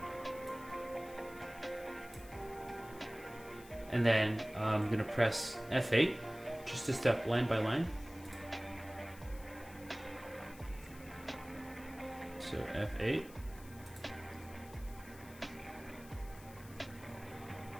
And then I'm going to press F8 just to step line by line. So F8.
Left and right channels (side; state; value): left; noise; hiss, 20 dB below the sound